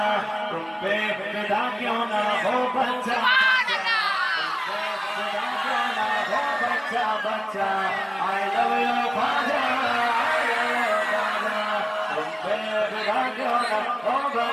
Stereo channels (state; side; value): identical; both; correlation 1.00